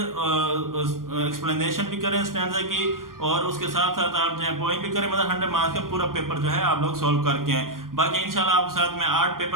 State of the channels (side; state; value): left; late; 0.91 ms